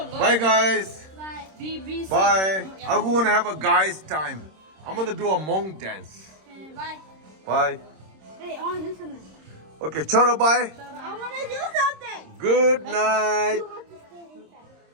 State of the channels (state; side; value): late; left; 26 ms